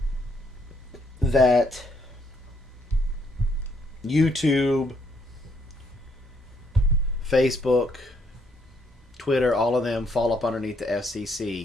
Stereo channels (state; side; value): normal; both; correlation 0.71